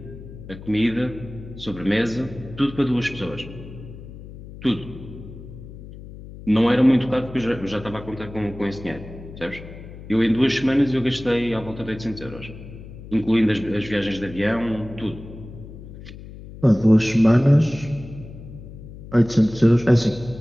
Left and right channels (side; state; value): left; noise; hum, 15 dB below the sound